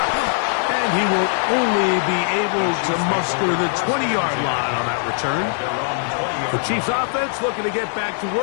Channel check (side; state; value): right; silent; 64 dB below the other